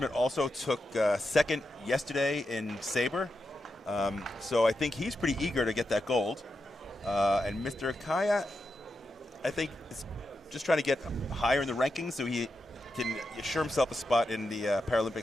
also took 2nd yesterday in Sabre. So I think he's pretty eager to get that gold. And Mr. Akaya, I think, is just trying to get higher in the rankings so he can assure himself a spot in the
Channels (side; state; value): both; normal; correlation 0.87